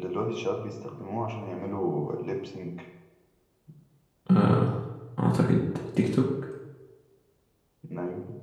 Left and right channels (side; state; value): both; identical; correlation 1.00